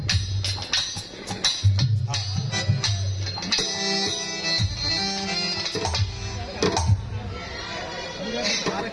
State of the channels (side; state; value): both; identical; correlation 1.00